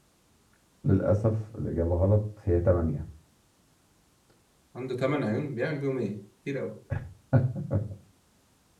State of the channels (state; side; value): identical; both; correlation 1.00